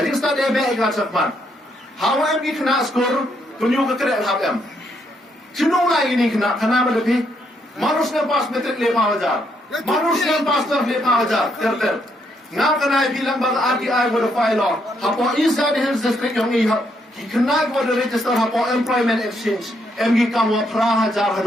start dia baik kat sekolah. Hawa em ki kena school tunjuk ke kerja hab em. Cino lagi ni kena lebih manusia pas metrik 5,000. Manusia pastor lepa aja, ter. Ngam kena bilang bang RTI pada file. Hapo East District yang ini, kena pada register hapo employment exchange. MG kamu pra hajar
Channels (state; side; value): normal; both; correlation 0.75